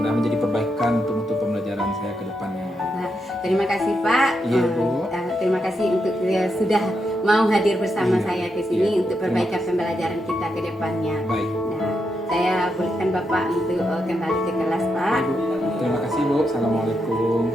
menjadi perbaikan untuk pembelajaran saya ke depannya. Nah, terima kasih Pak. Iya, Bu. Terima kasih untuk sudah mau hadir bersama Iya, saya ke sini iya. untuk perbaikan pembelajaran kita ke depannya. Baik. Nah, saya bolehkan Bapak untuk kembali ke kelas Pak. Ibu. Terima kasih Bu. Assalamualaikum.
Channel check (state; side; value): normal; both; correlation 0.83